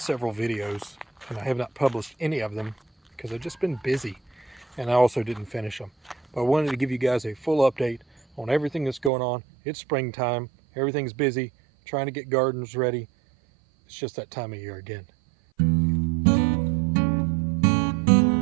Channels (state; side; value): drops out; left; at 9.1 s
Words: videos and I have not published any of them because I've just been busy and I also didn't finish them. But I wanted to give you guys a full update on everything that's going on. It's springtime, everything's busy, trying to get gardens ready. It's just that time of year again.